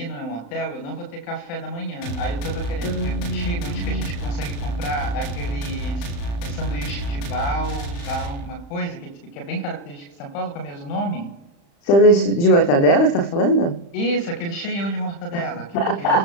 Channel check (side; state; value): right; late; 35 ms